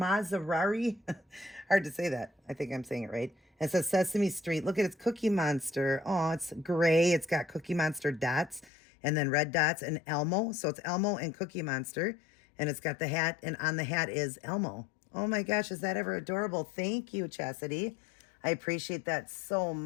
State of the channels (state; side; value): drops out; right; at 8.7 s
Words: Hard to say that. I think I'm saying it right. And it says Sesame Street. Look at its Cookie Monster. Oh, it's gray. It's got Cookie Monster dots and then red dots and Elmo. So it's Elmo and Cookie Monster. And it's got the hat, and on the hat is Elmo. Oh my gosh, is that ever adorable? Thank you, Chastity. I appreciate that so